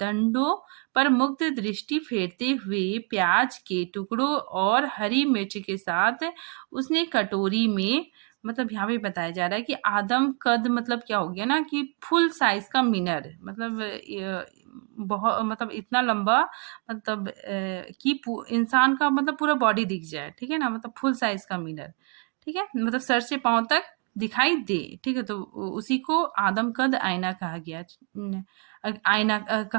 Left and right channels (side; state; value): left; quieter; 35.8 dB